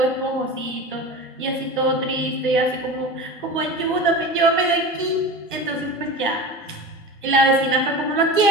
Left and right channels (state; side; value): normal; both; correlation 0.31